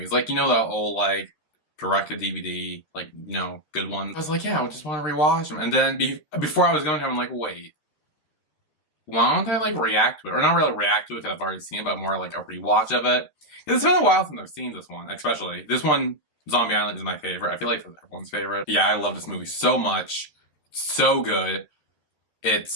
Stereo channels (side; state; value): right; late; 13 ms